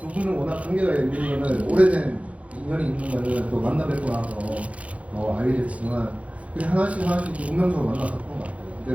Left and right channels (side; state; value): left; late; 0.065 ms